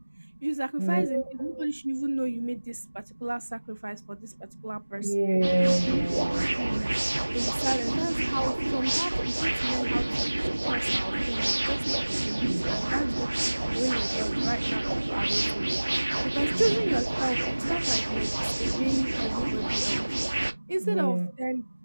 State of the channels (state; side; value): inverted; both; correlation -1.00